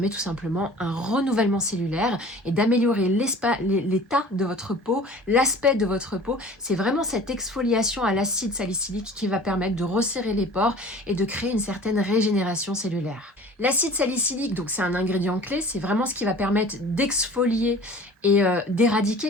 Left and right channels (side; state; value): both; normal; correlation 0.44